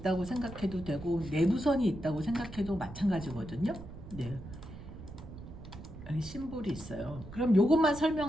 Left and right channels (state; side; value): noise; right; rumble, 13 dB below the sound